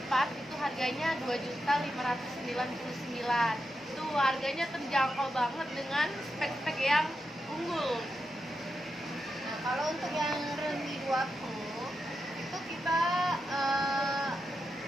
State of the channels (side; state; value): both; normal; correlation 0.87